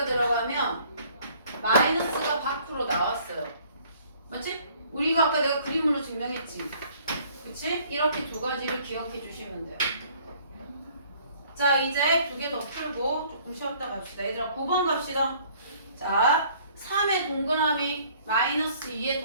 들어가면 마이너스가 밖으로 나왔어요. 맞지? 우리가 아까 내가 그림으로 증명했지. 그치? 이렇게 두 가지를 기억해 주시면 돼요. 자 이제 두 개 더 풀고 조금 쉬었다 갑시다. 얘들아 9번 갑시다. 자 3의 동그라미 마이너스 2의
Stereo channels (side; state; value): both; inverted; correlation -0.57